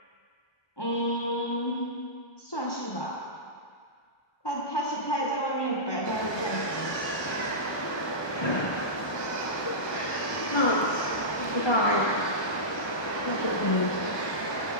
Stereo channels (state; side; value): late; right; 1.2 ms